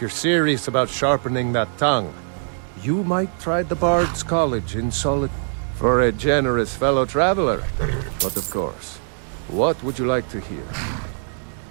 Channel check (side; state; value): left; silent; 64 dB below the other